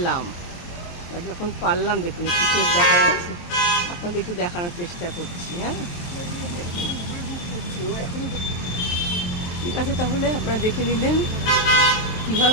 আর যখন পারলাম, দেখুন একটু চোখ দেখা যাচ্ছে, আপনাদের একটু দেখানোর চেষ্টা করছি। হ্যাঁ, ঠিক আছে, তাহলে আপনারা দেখে নিলেন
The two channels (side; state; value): right; late; 23 ms